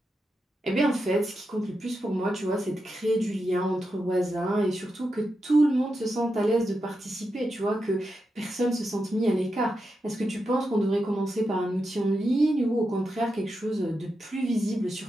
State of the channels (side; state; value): both; normal; correlation 0.87